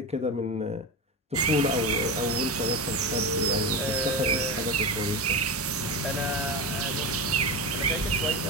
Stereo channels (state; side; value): normal; both; correlation 0.21